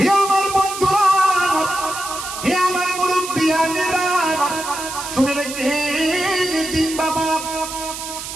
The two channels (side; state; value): right; noise; hiss, 8 dB below the sound